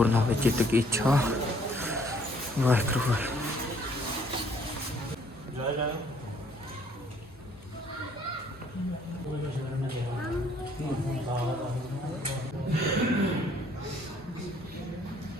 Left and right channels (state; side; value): normal; both; correlation 0.62